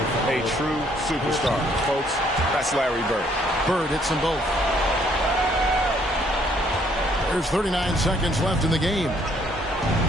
a true superstar. Folks, that's Larry Bird. Bird hits them both. There's 39 seconds left in the game.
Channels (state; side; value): normal; both; correlation 0.65